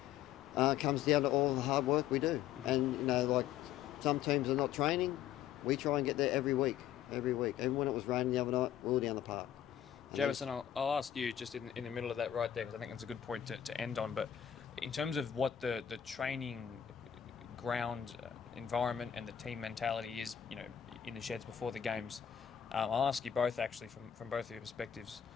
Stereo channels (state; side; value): quieter; right; 10.1 dB